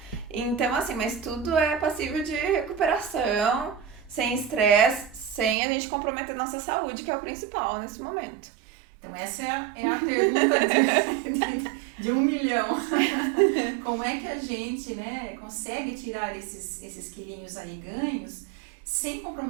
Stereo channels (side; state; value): left; drops out; at 5.6 s